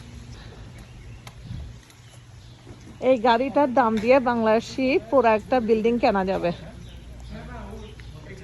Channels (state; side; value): identical; both; correlation 1.00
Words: এই গাড়িটার দাম দিয়ে বাংলাদেশি পুরো একটা বিল্ডিং কেনা যাবে,